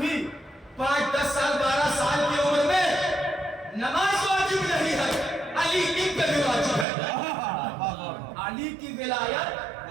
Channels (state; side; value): drops out; left; at 6.9 s